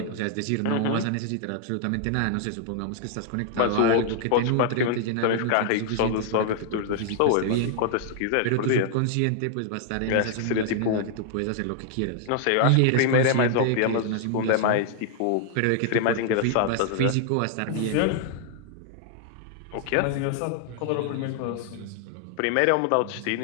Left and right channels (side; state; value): both; different; correlation 0.00